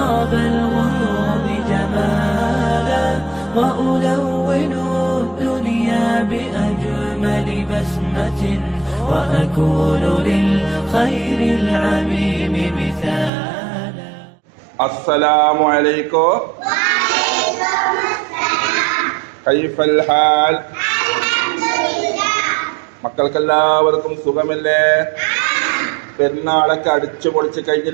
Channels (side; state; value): left; drops out; at 13.3 s